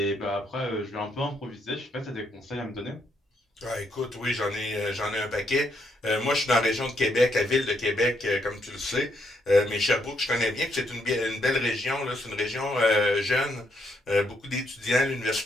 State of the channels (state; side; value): normal; both; correlation 0.76